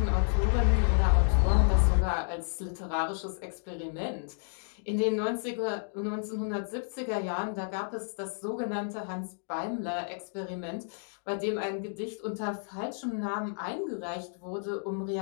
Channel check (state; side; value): silent; right; digital silence